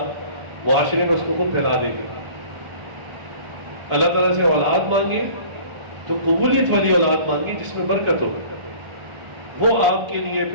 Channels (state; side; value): late; left; 1.4 ms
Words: معاشرے میں اس کو خود پھیلا دے گا۔ اللہ تعالیٰ سے اولاد مانگے تو قبولیت والی اولاد مانگے جس میں برکت ہو، وہ آپ کے لیے